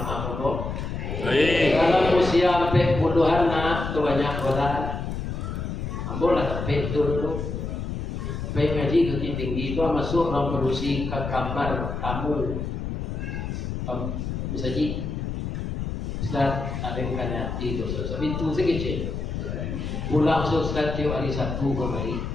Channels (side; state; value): left; noise; rumble, 4 dB below the sound